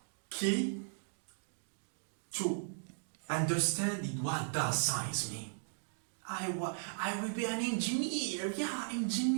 key to understanding what does science mean. I will be an engineer. Yeah,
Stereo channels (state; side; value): silent; left; digital silence